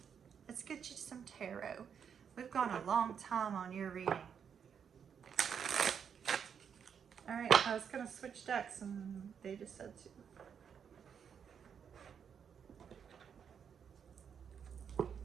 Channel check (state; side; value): quieter; left; 7.4 dB